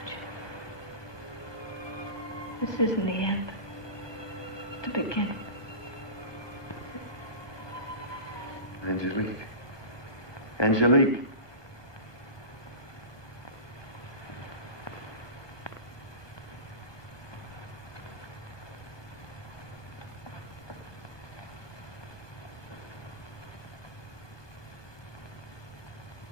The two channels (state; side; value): late; right; 1.2 ms